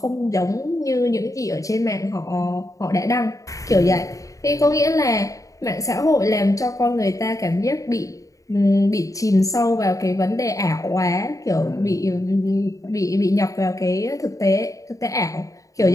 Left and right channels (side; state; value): right; late; 0.16 ms